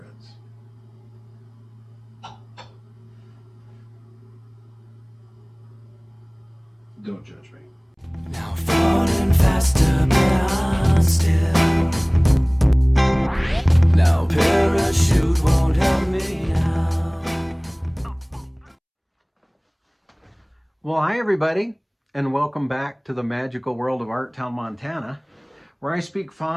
Don't judge me. Now falling faster, but I'm still. Now parachute won't help me now. Well, hi everybody, and welcome back to the magical world of Art Town, Montana, where I speak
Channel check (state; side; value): identical; both; correlation 1.00